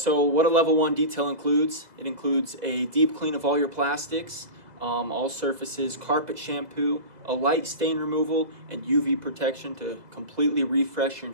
what a level 1 detail includes, it includes a deep clean of all your plastics, all surfaces, carpet shampoo, a light stain removal, and UV protection to completely refresh your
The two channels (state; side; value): late; left; 2.0 ms